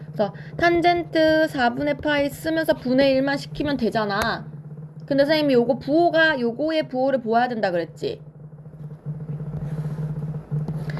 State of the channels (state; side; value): identical; both; correlation 1.00